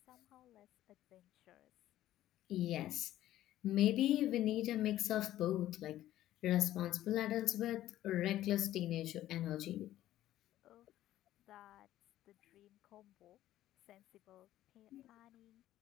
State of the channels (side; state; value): right; quieter; 13.6 dB